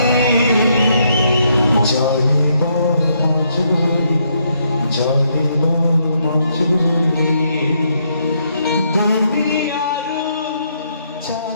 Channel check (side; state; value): both; inverted; correlation -0.75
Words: জলিব মজুরি জলিব মজুরি দুনিয়ার